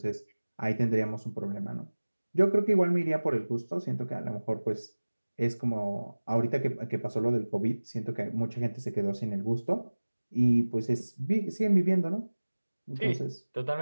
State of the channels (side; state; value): both; inverted; correlation -1.00